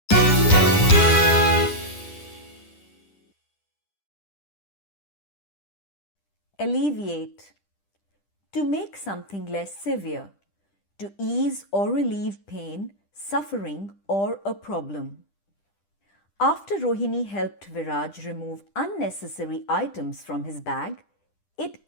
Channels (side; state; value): right; late; 10 ms